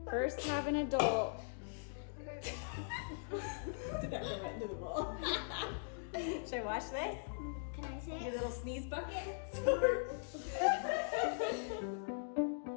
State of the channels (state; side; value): silent; right; digital silence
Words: first have an adult. Did that go right into the bowl? Should I wash this? Can I say Your it? little sneeze bucket?